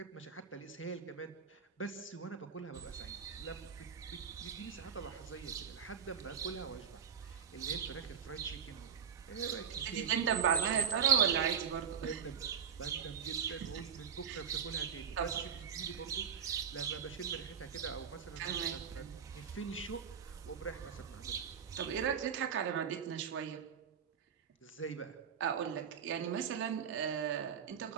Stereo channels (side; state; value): left; quieter; 7.4 dB